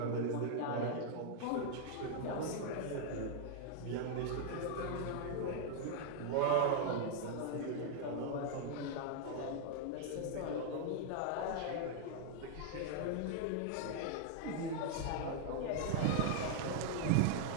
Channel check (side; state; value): both; different; correlation -0.01